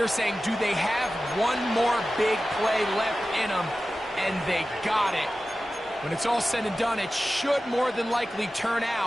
saying, do they have one more big play left in them? And they got it. When it's all said and done, it should more than likely turn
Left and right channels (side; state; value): both; normal; correlation 0.95